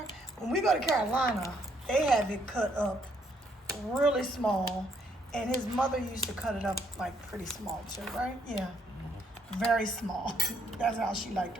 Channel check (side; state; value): both; normal; correlation 0.69